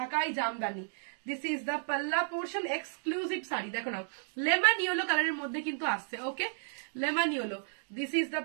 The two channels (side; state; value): left; silent; digital silence